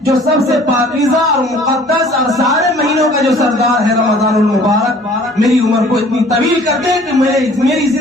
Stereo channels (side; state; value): both; normal; correlation 0.52